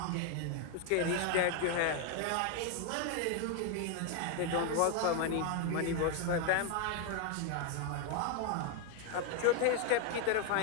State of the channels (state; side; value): different; both; correlation 0.01